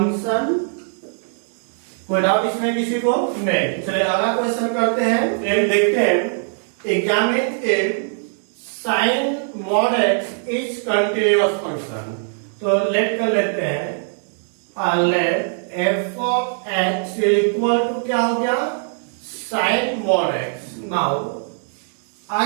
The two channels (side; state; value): left; silent; digital silence